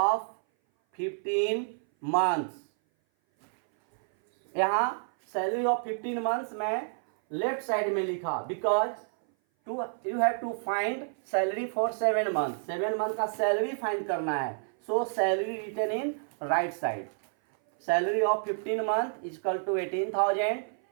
15 months. यहाँ सैलरी ऑफ 15 मंथ्स में लेफ्ट साइड में लिखा because you have to find salary for 7 month. 7 month का सैलरी फाइंड करना है, so salary written in right side. Salary of 15 month is equal to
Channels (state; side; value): silent; left; 57 dB below the other